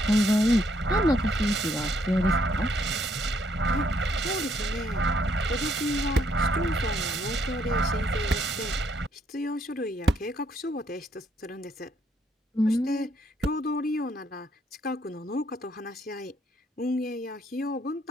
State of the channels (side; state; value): both; normal; correlation 0.71